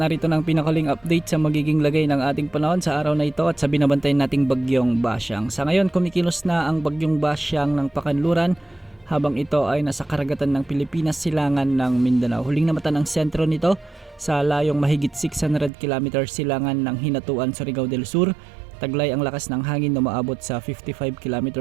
Narito ng pinakaling update sa magiging lagay ng ating panahon sa araw na ito at sa binabantay nating bagyong Basyang. Sa ngayon, kumikilos na ang bagyong Basyang ng Pakanluran habang ito ay nasa karagatan ng Pilipinas, silangan ng Mindanao. Huling namatan ang sentro nito sa layong mahigit 600 km silangan ng Hinatuan, Surigao del Sur. Taglay ang lakas ng hangin na umaabot sa 55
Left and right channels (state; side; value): drops out; left; at 15.7 s